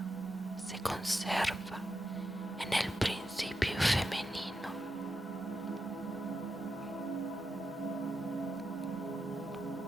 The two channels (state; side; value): normal; both; correlation 0.87